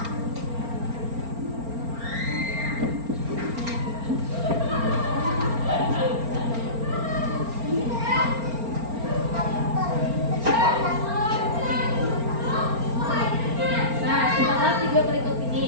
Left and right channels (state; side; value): late; left; 4.4 ms